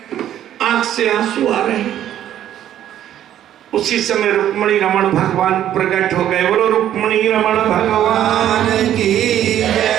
आंख से आंसू आ रहे हैं। उसी समय रुक्मिणी रमण भगवान प्रकट हो गए। बोलो रुक्मिणी रमण भगवान की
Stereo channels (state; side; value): quieter; left; 11.3 dB